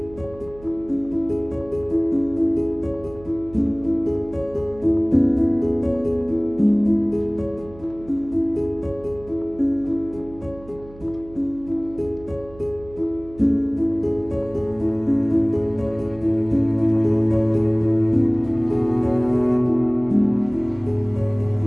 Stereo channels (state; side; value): noise; right; hum, 20 dB below the sound